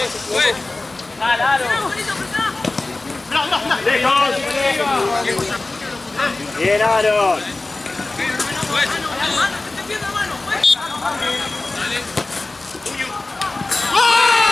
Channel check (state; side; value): quieter; right; 3.1 dB